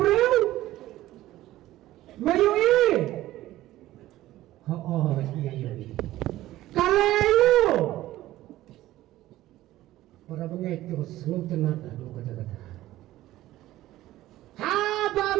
Mayai. Mayai. Kalayu para pengecut selum tenat adu kata-kata haba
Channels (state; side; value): quieter; left; 15.4 dB